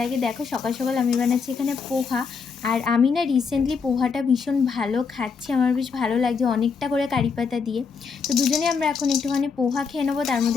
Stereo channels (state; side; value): quieter; right; 5.5 dB